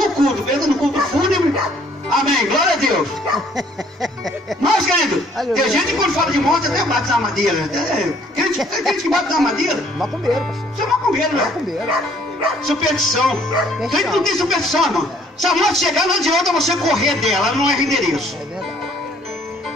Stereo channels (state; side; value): normal; both; correlation 0.61